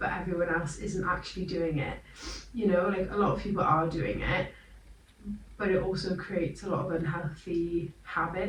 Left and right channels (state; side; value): identical; both; correlation 1.00